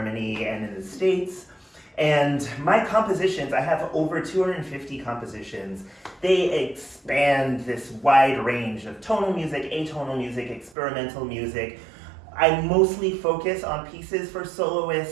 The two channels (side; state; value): left; drops out; at 10.8 s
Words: and in the States. And my compositions, I have over 250 compositions. They expand this wide range of tonal music, atonal music, experimental music. I mostly focus on pieces for